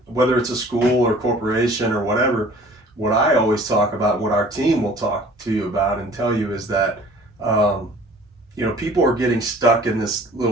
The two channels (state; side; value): normal; both; correlation 0.49